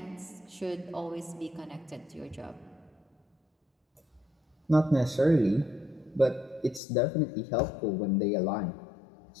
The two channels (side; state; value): right; drops out; at 6.8 s